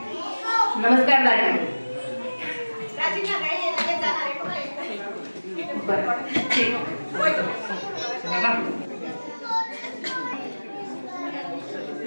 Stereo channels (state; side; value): inverted; both; correlation -1.00